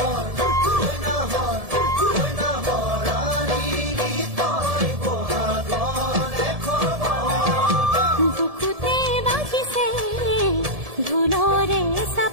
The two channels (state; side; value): late; left; 1.7 ms